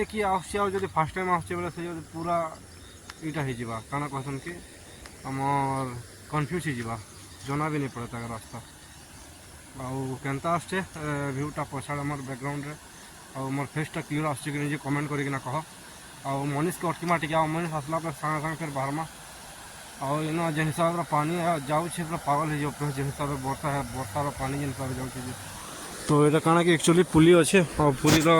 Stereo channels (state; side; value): identical; both; correlation 1.00